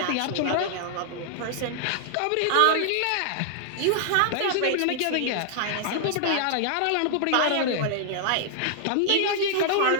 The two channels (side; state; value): both; different; correlation -0.01